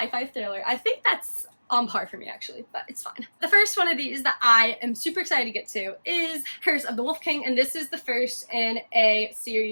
thriller. I think that's on par for me, actually, but it's fine. The first one of these that I am super excited to get to is Curse of the Wolf King, and this is the first in a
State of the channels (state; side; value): inverted; both; correlation -1.00